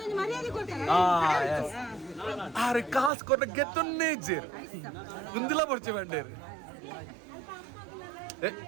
ಆರೆ ಕಾಸು ಕೊಟ್ಟ ಗೆತ್ತೊನ್ನೇ ಇಜ್ಜೇರು ಮುಂದಿಲ ಬರ್ಚೆ ಬಂಡೇರು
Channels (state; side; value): drops out; left; at 3.1 s